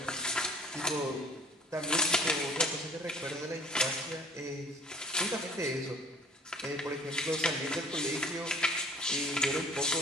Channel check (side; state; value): both; normal; correlation 0.52